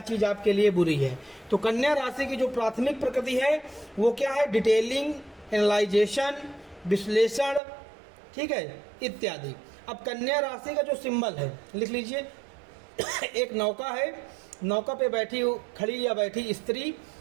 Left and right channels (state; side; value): drops out; left; at 7.6 s